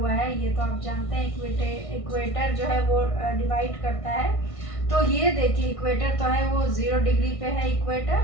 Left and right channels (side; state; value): right; late; 1.6 ms